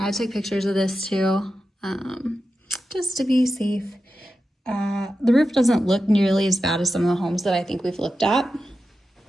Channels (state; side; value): normal; both; correlation 0.91